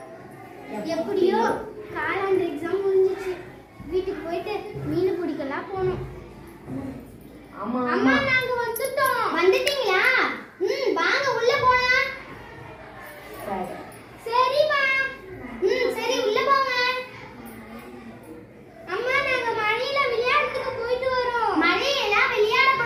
எப்படியோ காலாண்டு எக்ஸாம் முடிஞ்சிச்சு. வீட்டுக்கு போயிட்டு மீன் பிடிக்கலாம் போனோம். அம்மா அம்மா நாங்க வந்துட்டோம். வந்துட்டீங்களா? வாங்க உள்ள போலாம். சரிமா. சரி உள்ள போங்க. அம்மா நாங்க மழையில விளையாடுறதுக்கு போயிட்டு வரோம். மழையில விளையாட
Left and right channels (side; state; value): both; identical; correlation 1.00